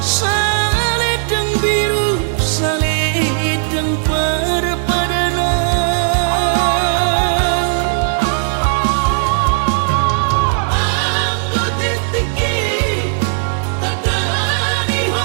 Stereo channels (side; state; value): left; silent; digital silence